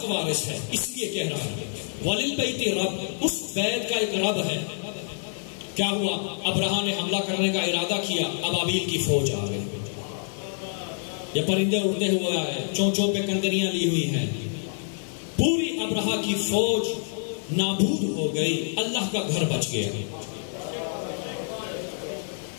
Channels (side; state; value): right; silent; digital silence